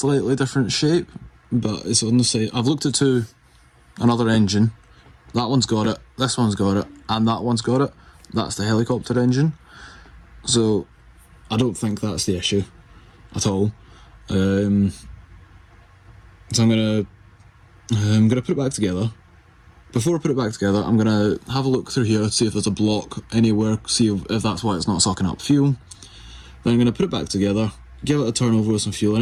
different shape, but it's on the side. I've looked at another engine. That one's got it, this one's got it, and that one's got it. That's the helicopter engine. So I don't think that's the issue at all. So I'm gonna put it back together. Before I put it back together, I'm going to have a look through here to see if there's a block anywhere, see if that's why it's not sucking up fuel. Then I'm going to put it back together, give it a turn over with some fuel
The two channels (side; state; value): both; identical; correlation 1.00